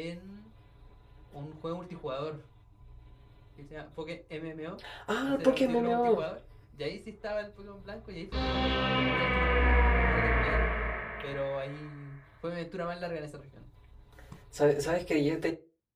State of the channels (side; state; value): both; identical; correlation 1.00